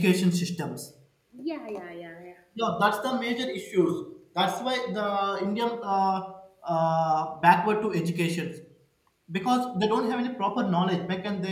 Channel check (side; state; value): both; identical; correlation 1.00